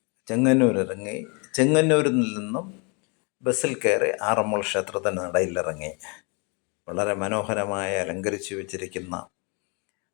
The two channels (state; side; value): quieter; right; 33.2 dB